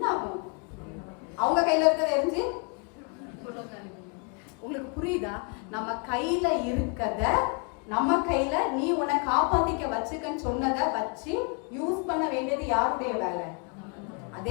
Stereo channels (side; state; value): right; quieter; 35.7 dB